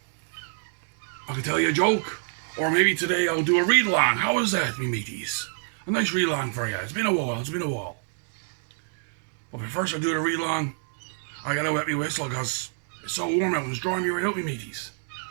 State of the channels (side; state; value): left; silent; digital silence